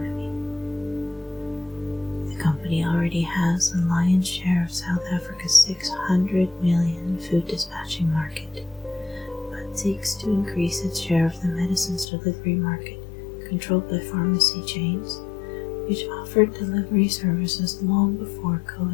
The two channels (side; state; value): right; drops out; at 12.1 s